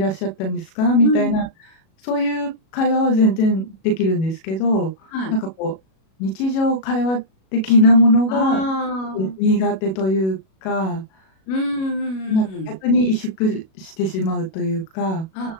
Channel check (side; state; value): right; late; 37 ms